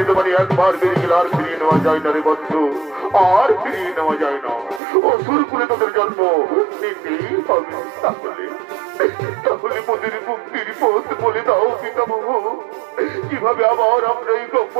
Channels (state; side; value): drops out; left; at 4.8 s